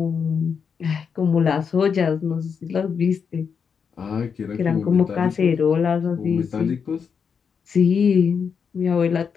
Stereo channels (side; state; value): right; quieter; 6.4 dB